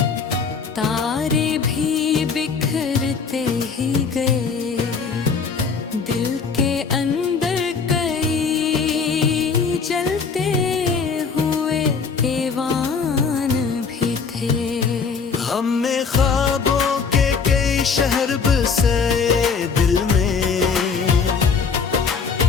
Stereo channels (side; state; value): right; quieter; 5.4 dB